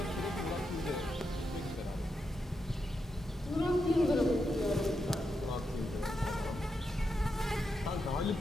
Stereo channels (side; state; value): both; normal; correlation 0.85